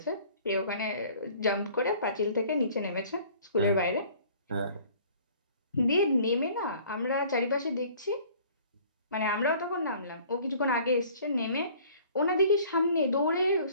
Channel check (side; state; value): both; inverted; correlation -0.52